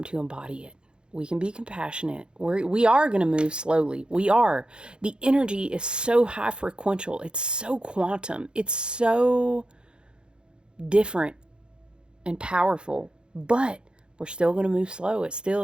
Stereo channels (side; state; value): left; late; 0.051 ms